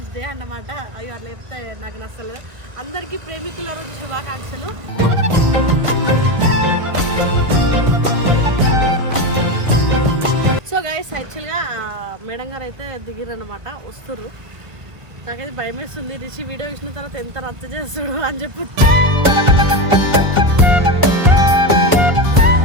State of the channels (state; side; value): late; left; 1.5 ms